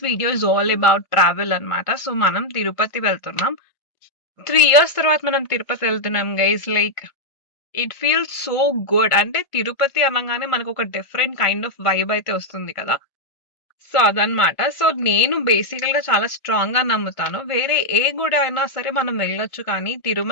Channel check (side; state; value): right; late; 1.4 ms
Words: video is all about travel అన్నమాట. సో మనం తిరుపతి వెళ్తున్నాం. 3 ఇయర్స్ తర్వాత మనం తిరుపతి వెళ్తున్నాం guys. Like it feels so good. అంటే తిరుపతి అనగానే మనకు ఒక డిఫరెంట్ కైండ్ ఆఫ్ వైబ్ అయితే వస్తుంది కదా. సో అదనమాట. సో నేను బేసికల్‌గా చాలా స్ట్రాంగ్‌గా నమ్ముతాను. వేరే ఏ గుడి అయినా సరే మనం వెళ్ళొచ్చు కానీ,